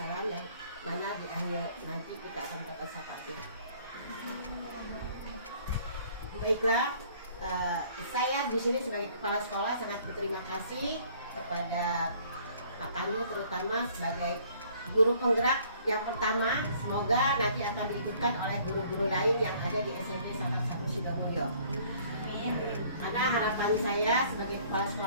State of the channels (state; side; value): inverted; both; correlation -0.58